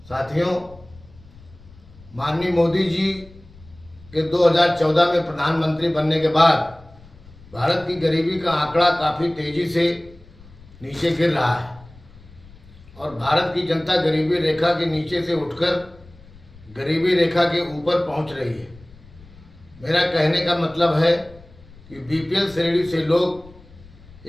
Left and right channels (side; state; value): left; noise; rumble, 23 dB below the sound